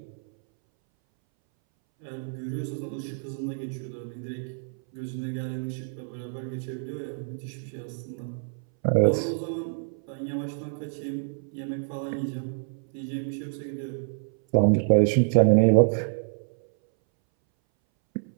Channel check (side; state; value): left; silent; 60 dB below the other